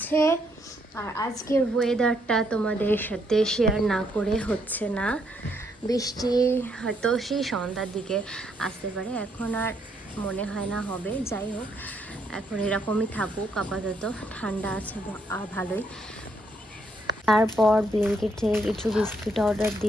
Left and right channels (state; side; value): normal; both; correlation 0.74